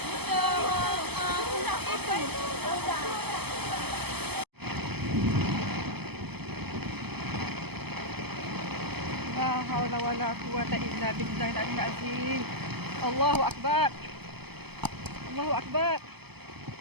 لا حول ولا قوة إلا بالله العلي العظيم. الله أكبر. الله أكبر.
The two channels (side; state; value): left; late; 0.97 ms